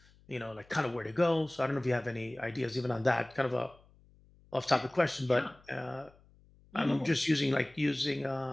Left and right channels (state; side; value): noise; left; hum, 28 dB below the sound